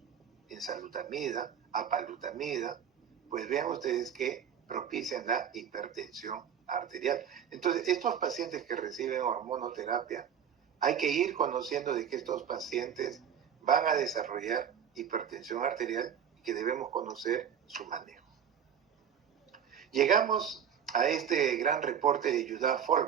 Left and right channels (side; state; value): left; quieter; 8.2 dB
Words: enzalutamida, apalutamida, pues vean ustedes que propician la hipertensión arterial. Entonces, estos pacientes que reciben hormonoterapia, hay que ir conociendo de que estos pacientes van a desarrollar hipertensión arterial y que debemos conocer su manejo. Llegamos a este gran reporte de Judá